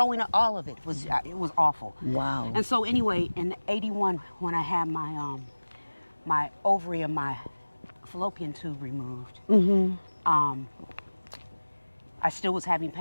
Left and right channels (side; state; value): both; inverted; correlation -1.00